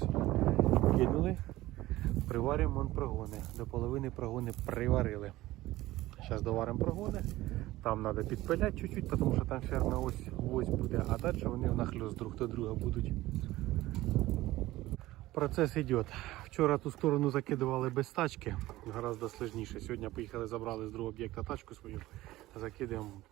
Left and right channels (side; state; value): left; quieter; 17.1 dB